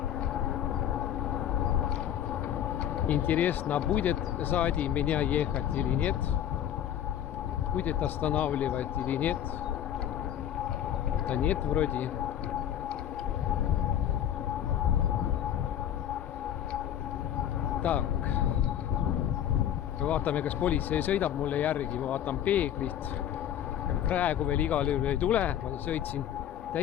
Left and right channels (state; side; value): quieter; right; 10.6 dB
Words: Интересно, будет сзади меня ехать или нет? Будет останавливать или нет? Да нет, вроде. Так. Vaatame, kas politsei sõidab mulle järgi, ma vaatan peeglist. Praegu veel igal juhul ei tule, ma sõitsin